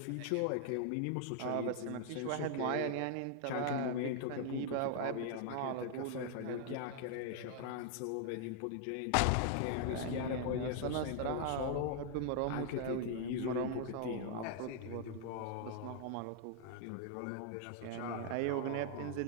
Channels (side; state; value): both; different; correlation 0.00